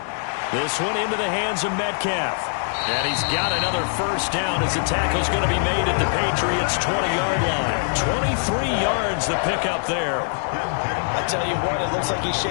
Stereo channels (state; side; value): silent; right; digital silence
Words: This one into the hands of Metcalf. And he's got another 1st down as the tackle's going to be made at the Patriots' 20-yard line. 23 yards the pickup there. I tell you what, it looks like he's